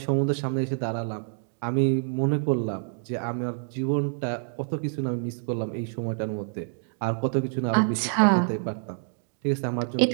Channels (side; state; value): left; silent; digital silence